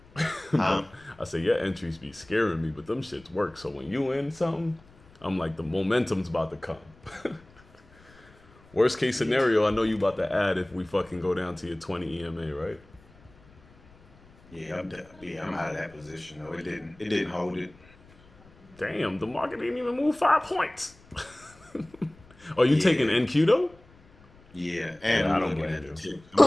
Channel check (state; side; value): noise; left; rumble, 26 dB below the sound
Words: Huh? I say your entries be scaring me, but them shits work. So when you in something, I'm like, the momentum's about to come. Worst case scenario, I know you about to add if we fucking go down to your 20 EMA, right? Yeah, I'm out of that position though. It didn't hold it. Damn, the market didn't even move 5 points. Are you taking NQ though? Yeah, and I don't blame you.